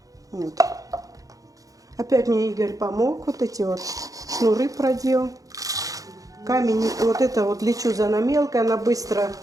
Вот. Опять мне Игорь помог, вот эти вот шнуры продел. Камень, вот это вот лечуза мелкая, она быстро,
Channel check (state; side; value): late; left; 0.17 ms